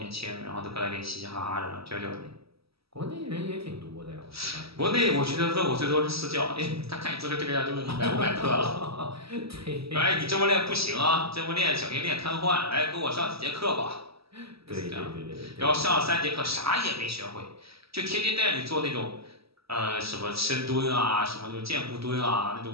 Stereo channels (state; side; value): late; left; 0.76 ms